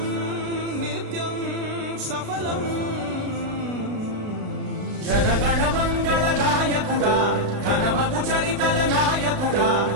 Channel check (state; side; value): late; left; 35 ms